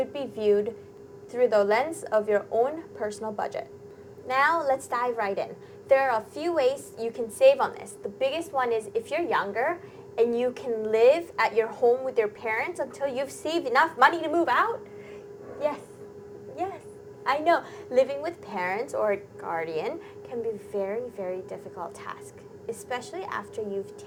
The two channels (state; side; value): identical; both; correlation 1.00